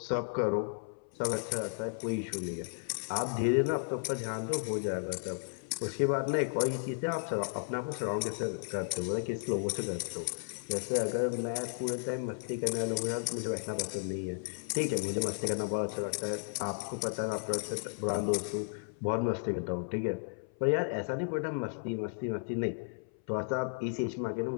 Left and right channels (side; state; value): right; silent; 55 dB below the other